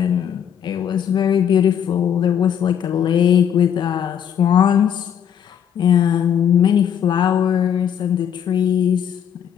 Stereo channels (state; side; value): quieter; right; 8.7 dB